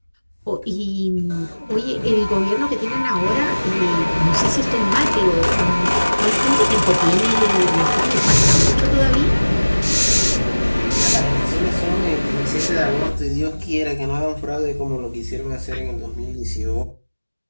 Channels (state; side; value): inverted; both; correlation -1.00